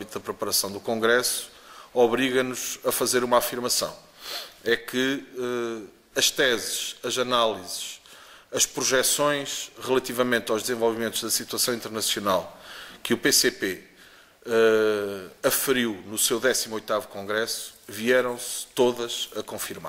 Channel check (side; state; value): both; identical; correlation 1.00